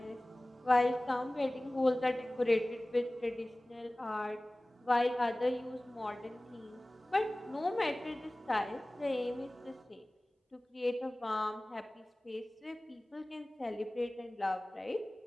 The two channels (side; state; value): both; normal; correlation 0.98